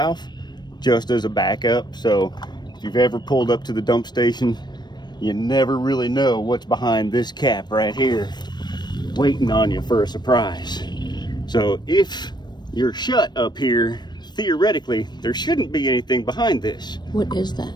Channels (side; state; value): right; late; 0.21 ms